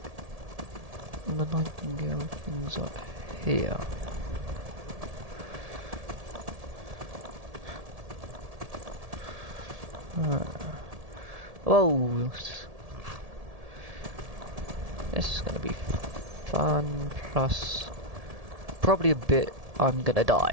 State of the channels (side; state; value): left; late; 1.7 ms